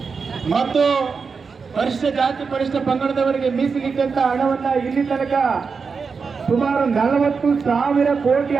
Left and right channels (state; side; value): quieter; left; 5.2 dB